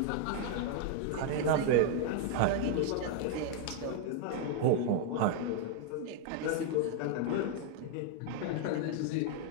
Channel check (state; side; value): different; both; correlation 0.00